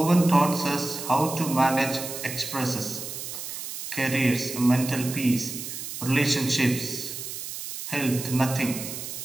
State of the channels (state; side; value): noise; right; hiss, 8 dB below the sound